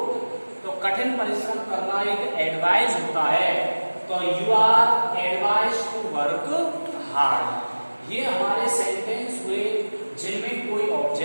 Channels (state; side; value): inverted; both; correlation -1.00